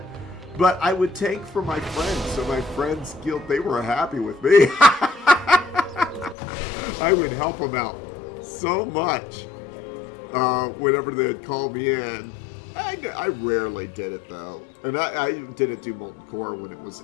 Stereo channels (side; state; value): right; drops out; at 6.4 s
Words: But I would tank for my friends, so my friends' guild, they were happy with me. I would help them out so much whenever they'd call me in. I rarely did it, though. And I didn't do Molten Core when it was